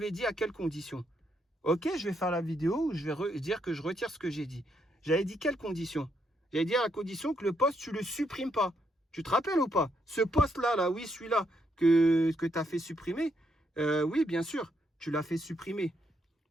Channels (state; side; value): normal; both; correlation 0.76